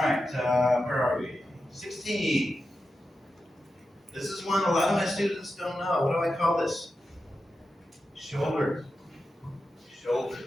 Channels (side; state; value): both; normal; correlation 0.90